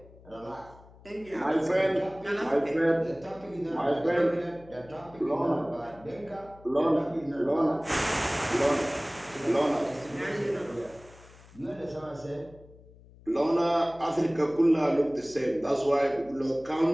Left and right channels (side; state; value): left; noise; hum, 23 dB below the sound